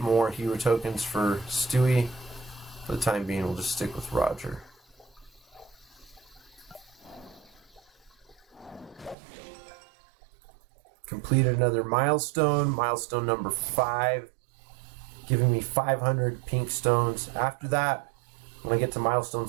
hero tokens for Stewie. For the time being, we'll just stick with Roger. Completed another milestone, milestone number 5, giving me 500 pink stones. After that, when I get to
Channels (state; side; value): drops out; left; at 9.2 s